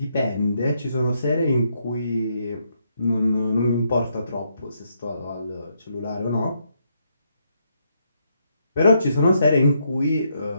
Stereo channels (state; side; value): inverted; both; correlation -0.77